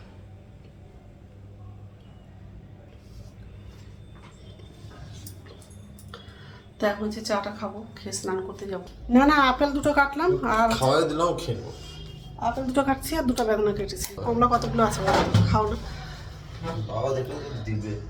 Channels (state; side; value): identical; both; correlation 1.00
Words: তো এখন হচ্ছে চাটা খাবো, খেয়ে স্নান করতে যাবো। না না, আপেল দুটো কাটলাম আর খাওয়াই দিলাম, খেয়ে নেবো। আপেল দুটো কাটছি আর দুটো বেদনা কেটেছি। কমলা কতগুলো আছে খাও না। বাবা দেখলে তো দিবে।